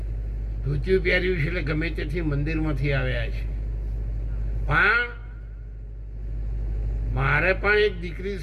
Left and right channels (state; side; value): identical; both; correlation 1.00